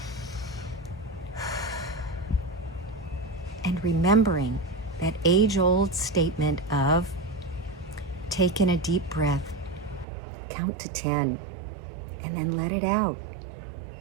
and remembering that age-old statement of take in a deep breath, count to 10, and then let it out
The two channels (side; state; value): left; drops out; at 10.1 s